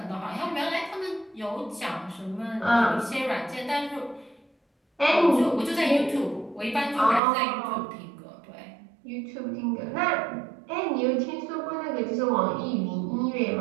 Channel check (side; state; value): left; drops out; at 7.2 s